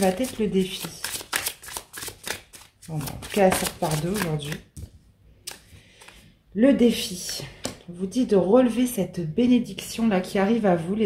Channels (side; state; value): both; identical; correlation 1.00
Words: être le défi? Bon, en tout cas, elle sort par deux aujourd'hui. Le défi. On vous dit de relever cette bénédiction là qui arrive à vous